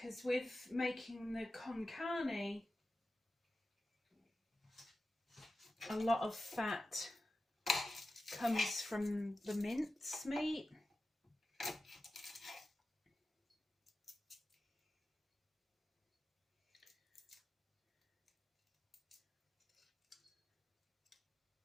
with making the con carne, a lot of fat comes from the mince meat.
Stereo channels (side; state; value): both; normal; correlation 0.93